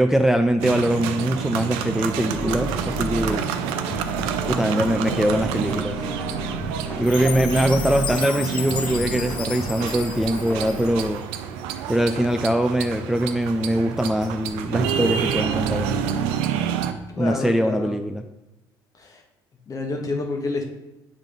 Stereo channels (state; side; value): normal; both; correlation 0.78